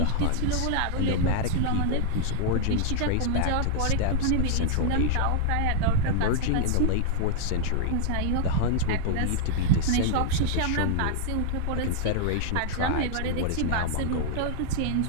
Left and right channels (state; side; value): different; both; correlation -0.01